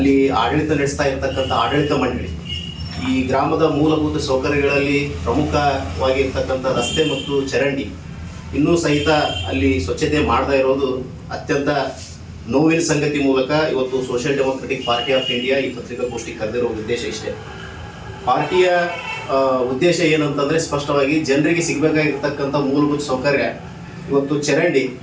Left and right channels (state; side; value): identical; both; correlation 1.00